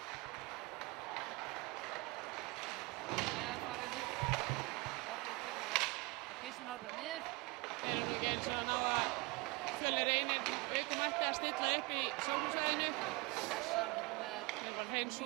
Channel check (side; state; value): left; quieter; 25.6 dB